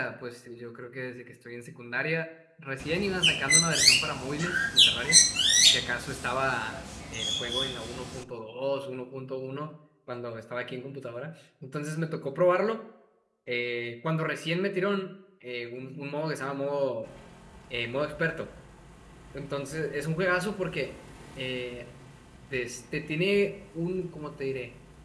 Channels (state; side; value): identical; both; correlation 1.00